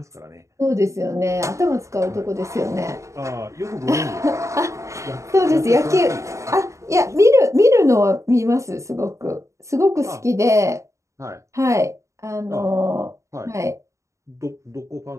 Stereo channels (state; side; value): late; left; 0.15 ms